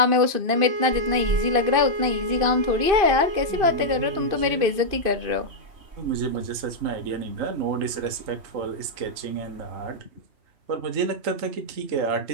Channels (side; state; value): left; late; 2.6 ms